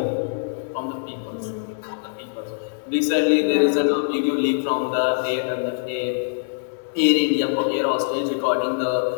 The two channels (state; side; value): silent; right; digital silence